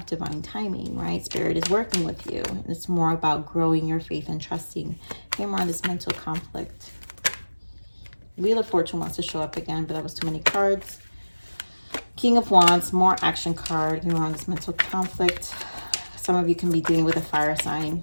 divine timing, right? Spirit is working with you. And it's more about growing your faith and trusting. Here more on this mental conflict. Wheel of Fortune wants to show up again, but that was too many cards. King of Wands, more action card. Here more on this mental conflict. Some of you can be dealing with a fire sign.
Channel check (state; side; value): inverted; both; correlation -1.00